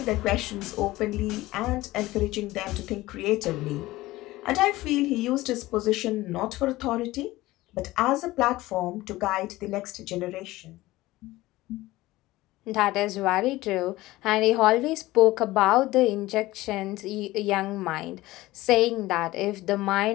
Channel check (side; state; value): right; quieter; 18.1 dB